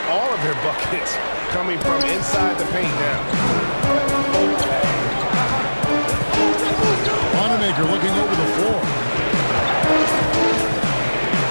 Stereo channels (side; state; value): both; inverted; correlation -1.00